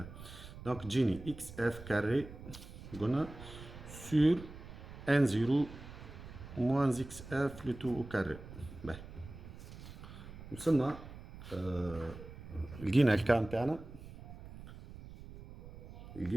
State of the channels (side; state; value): right; noise; rumble, 14 dB below the sound